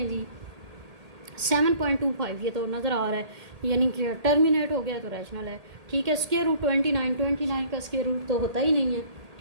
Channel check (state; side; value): late; left; 1.8 ms